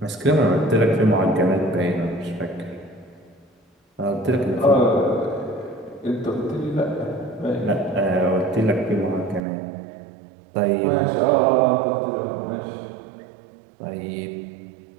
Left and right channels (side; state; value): left; drops out; at 9.4 s